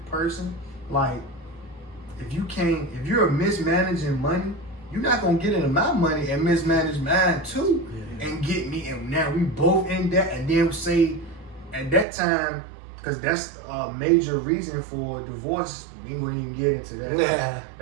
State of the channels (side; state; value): left; drops out; at 12.1 s